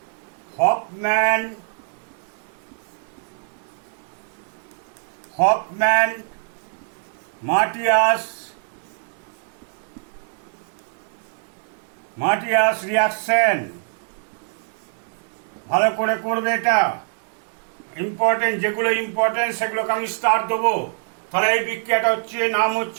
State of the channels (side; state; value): left; silent; digital silence